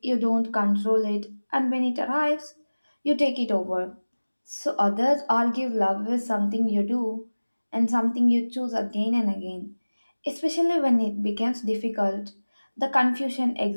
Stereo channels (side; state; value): both; inverted; correlation -1.00